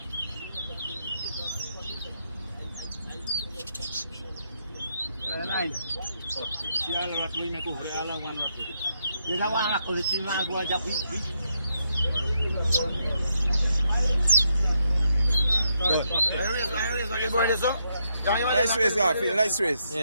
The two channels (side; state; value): both; inverted; correlation -0.79